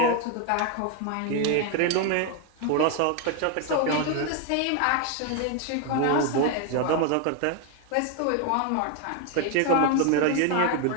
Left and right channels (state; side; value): different; both; correlation 0.01